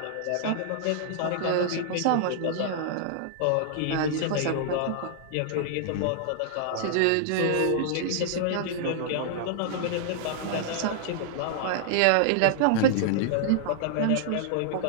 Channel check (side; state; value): both; different; correlation -0.01